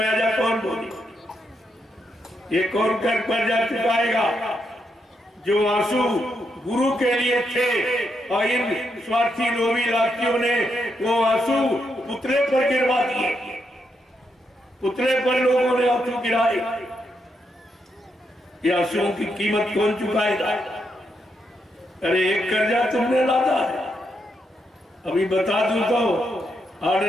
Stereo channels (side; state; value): both; normal; correlation 0.80